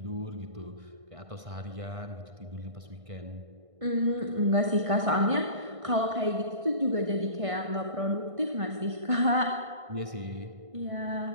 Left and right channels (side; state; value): left; late; 1.6 ms